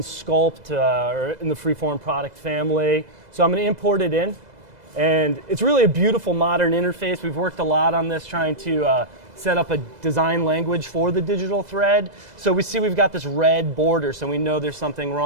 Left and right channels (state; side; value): late; left; 2.0 ms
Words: or in the Freeform product family. So I'm going to import it in, and it's really a beautiful modern interface. We've worked a lot on this, trying to set up a design language for the digital thread. So we see we've got this red border, so we know there's something